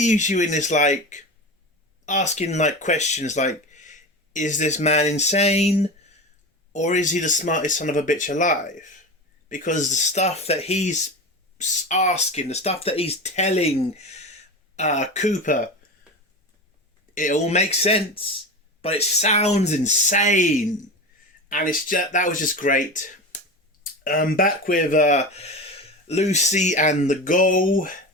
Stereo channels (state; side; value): normal; both; correlation 0.26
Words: you in this, asking, questions like, is this man insane? Or is he the smartest son of a bitch alive? Because the stuff that he's asking, the stuff that he's telling Cooper, it all makes sense, but it sounds insane, and that was just great. Back with Lucy and the Ghoul,